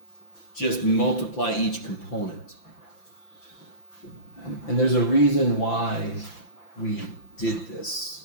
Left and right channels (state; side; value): late; right; 5.9 ms